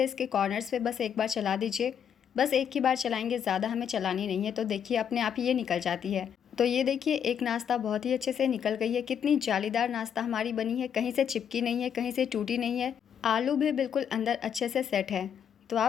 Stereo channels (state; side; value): quieter; right; 8.3 dB